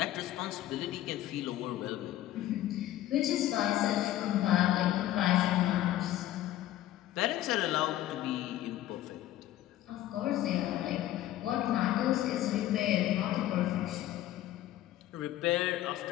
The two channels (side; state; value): right; quieter; 13.8 dB